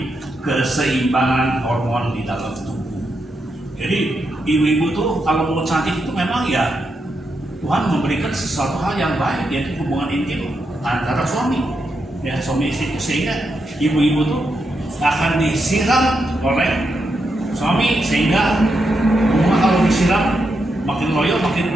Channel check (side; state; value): both; normal; correlation 0.84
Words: keseimbangan hormon di dalam tubuh. Jadi ibu-ibu tuh kalau mau cantik itu memang ya Tuhan memberikan sesuatu hal yang baik, yaitu hubungan intim antara suami, ya, suami istri, sehingga ibu-ibu tuh akan disiram oleh suami sehingga bunga kalau disiram makin loyo,